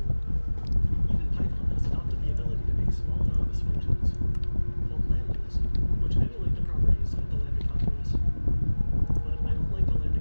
Even Python has adopted the ability to make small anonymous functions called lambdas, which emulate the properties of the lambda calculus. But I don't like the lambda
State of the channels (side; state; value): both; inverted; correlation -1.00